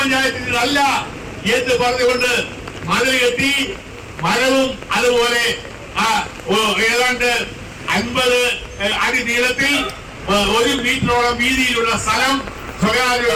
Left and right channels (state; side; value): identical; both; correlation 1.00